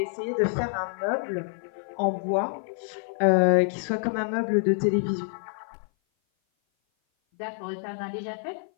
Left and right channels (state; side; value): silent; right; 56 dB below the other